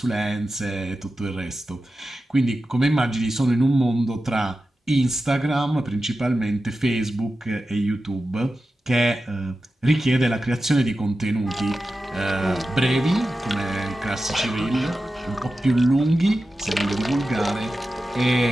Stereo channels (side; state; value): both; normal; correlation 0.93